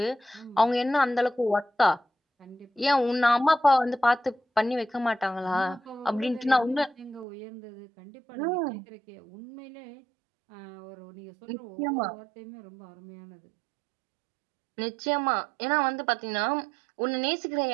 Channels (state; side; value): drops out; left; at 7.2 s